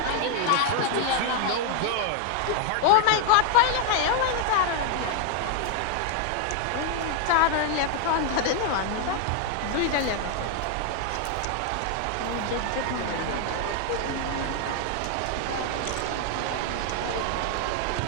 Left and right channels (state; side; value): different; both; correlation 0.00